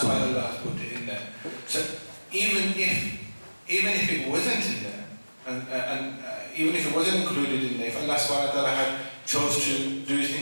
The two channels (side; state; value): both; inverted; correlation -1.00